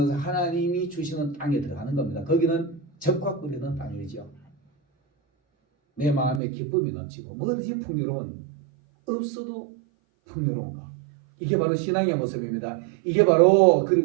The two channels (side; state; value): left; drops out; at 6.4 s